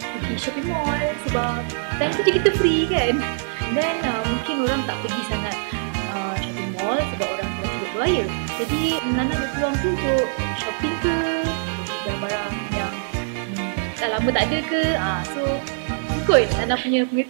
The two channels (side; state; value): left; silent; digital silence